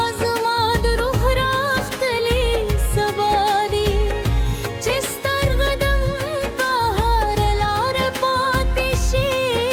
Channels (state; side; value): identical; both; correlation 1.00